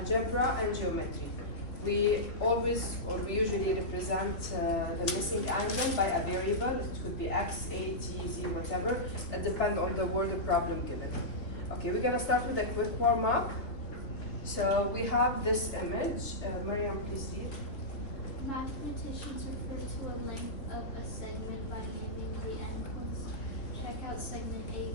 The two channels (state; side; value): late; right; 2.9 ms